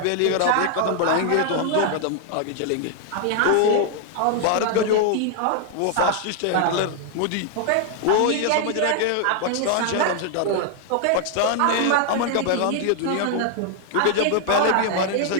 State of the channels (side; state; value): both; different; correlation 0.00